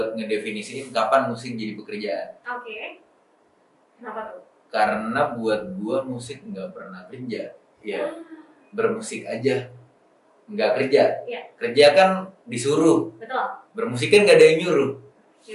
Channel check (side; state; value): both; identical; correlation 1.00